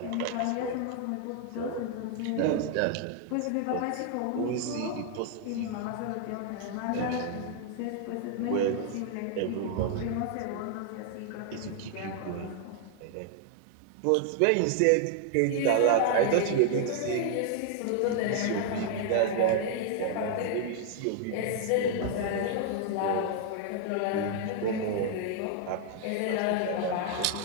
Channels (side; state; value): both; different; correlation 0.00